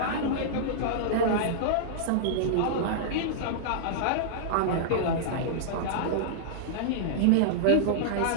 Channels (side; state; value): both; different; correlation -0.02